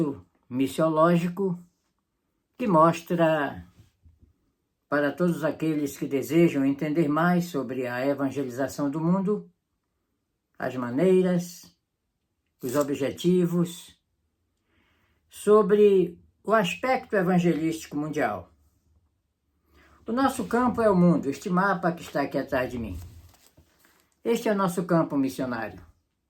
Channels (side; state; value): both; identical; correlation 1.00